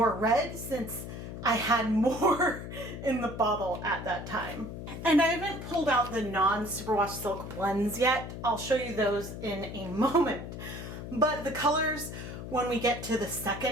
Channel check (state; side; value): noise; left; hum, 9 dB below the sound